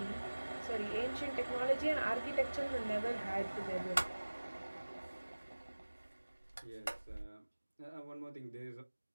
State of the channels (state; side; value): inverted; both; correlation -1.00